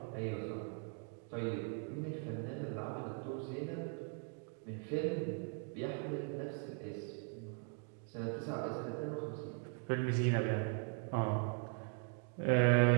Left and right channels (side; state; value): left; quieter; 39.5 dB